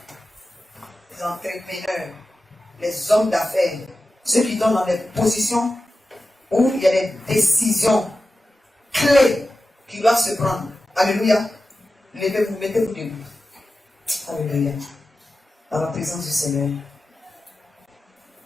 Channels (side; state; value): both; normal; correlation 0.93